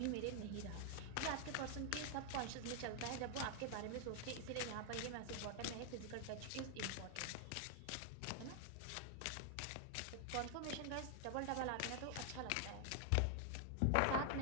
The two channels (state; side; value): different; both; correlation 0.00